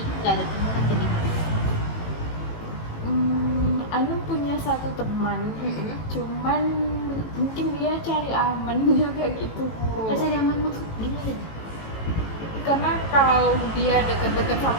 nggak ada teman atau gimana? Anu punya satu teman, cuman mungkin dia cari aman juga gitu. Masa nyaman maksud gimana? Karena kalau dia deket-deket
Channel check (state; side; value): late; right; 18 ms